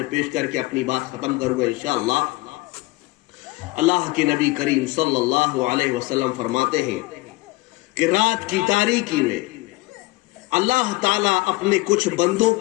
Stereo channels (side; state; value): right; quieter; 22.5 dB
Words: پیش کر کے اپنی بات ختم کروں گا انشاءاللہ۔ اللہ کے نبی کریم صلی اللہ علیہ وسلم فرماتے ہیں کہ رات کی تاریکی میں اللہ تعالیٰ اپنے کچھ بندوں